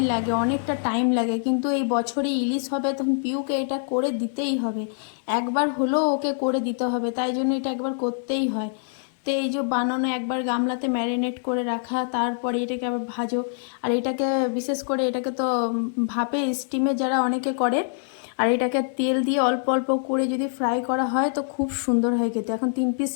লাগে, অনেকটা টাইম লাগে, কিন্তু এই বছরে ইলিশ হবে তখন পিউকে এটা করে দিতেই হবে, একবার হলেও ওকে করে দিতে হবে, তাই জন্য এটা একবার করতেই হয়। তো এই যে বানানো, একবার গামলাতে ম্যারিনেট করে রাখা, তারপরে এটাকে আবার ভাজো। আর এটাকে বিশেষ করে এটাকে তো ভাপে স্টিমে যারা অনেকে করে, আর এটাকে তেল দিয়ে অল্প অল্প করে যদি ফ্রাই করা হয় তো খুব সুন্দর হয় খেতে। এখন 3 পিস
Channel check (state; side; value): silent; right; digital silence